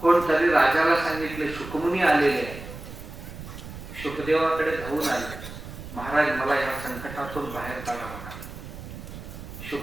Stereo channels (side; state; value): right; noise; rumble, 12 dB below the sound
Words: राजाला सांगितले, शुकमुनी आलेले आहे. शुकदेवाकडे धावून आले, महाराज मला या संकटातून बाहेर काढा म्हणाले.